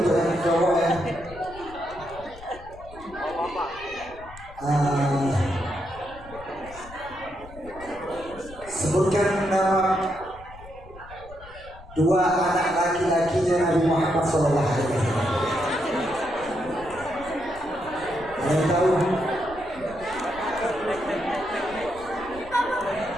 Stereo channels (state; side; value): noise; left; rumble, 18 dB below the sound